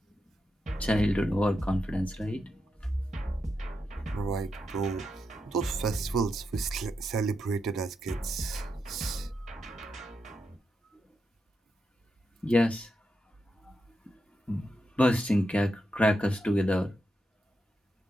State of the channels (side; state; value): both; normal; correlation 0.85